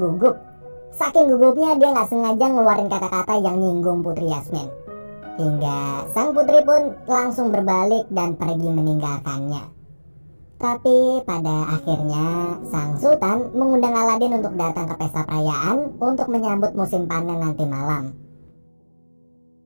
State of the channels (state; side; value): inverted; both; correlation -1.00